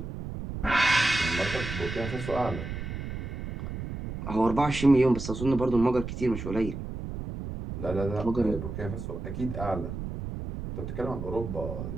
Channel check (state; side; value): noise; right; rumble, 7 dB below the sound